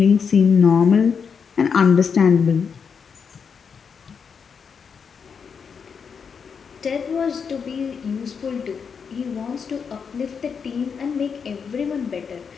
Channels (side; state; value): right; quieter; 6.3 dB